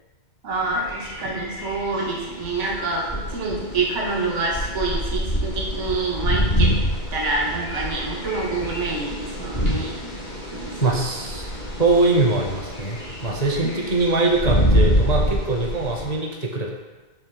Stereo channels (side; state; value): right; late; 2.1 ms